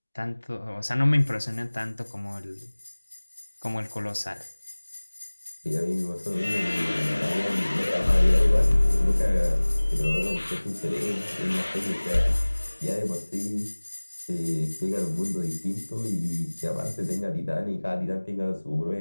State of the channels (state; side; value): inverted; both; correlation -1.00